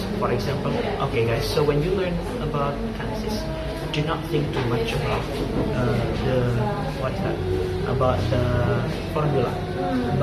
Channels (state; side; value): identical; both; correlation 1.00